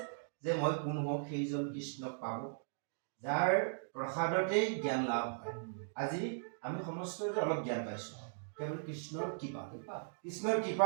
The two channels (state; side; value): silent; left; digital silence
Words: যে মই কোন হওঁ, সেইজন কৃষ্ণক পাব যাৰ প্ৰসাদতেই জ্ঞান লাভ হয়। আজি আমি সমস্তই অলপ জ্ঞান পাইছো কেৱল কৃষ্ণৰ কৃপা। কৃষ্ণৰ কৃপা